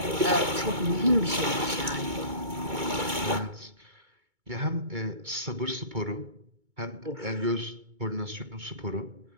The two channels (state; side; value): late; left; 2.2 ms